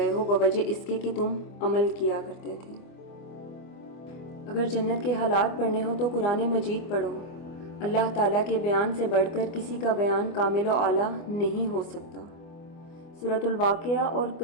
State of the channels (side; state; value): right; late; 25 ms